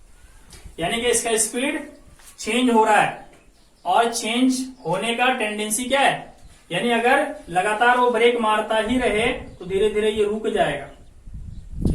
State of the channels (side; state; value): both; identical; correlation 1.00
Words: यानी कि इसका स्पीड चेंज हो रहा है, और चेंज होने का टेंडेंसी क्या है, यानी अगर लगातार वो ब्रेक मारता ही रहे तो धीरे धीरे ये रुक जाएगा।